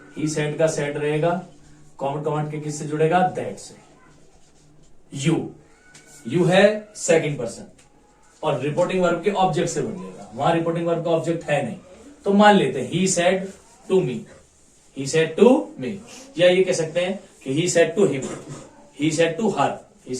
ही सेड का सेड रहेगा, कॉमन कमांड के किससे जुड़ेगा, दैट से। यू है सेकंड पर्सन और रिपोर्टिंग वर्ब के ऑब्जेक्ट से बदलेगा, वहां रिपोर्टिंग वर्ब का ऑब्जेक्ट है नहीं, तो मान लेते हैं he said to me, he said to me, या ये कह सकते हैं कि he said to him, he said to her, he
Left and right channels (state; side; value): identical; both; correlation 1.00